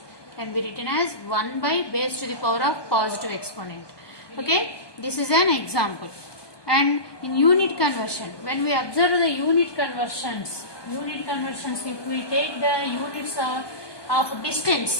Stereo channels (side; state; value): right; late; 1.2 ms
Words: can be written as 1 by base to the power of positive exponent. Okay, this is an example. And in unit conversion, when we observe the unit conversions, if we take the units of distance